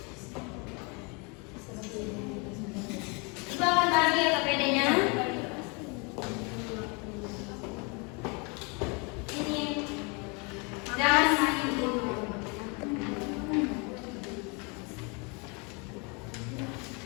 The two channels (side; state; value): right; quieter; 31.5 dB